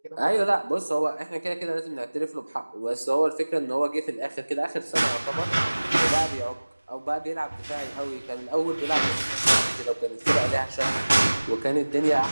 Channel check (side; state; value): both; inverted; correlation -1.00